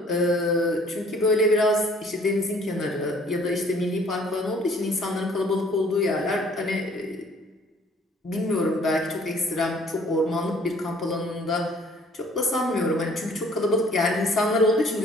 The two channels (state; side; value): normal; both; correlation 0.57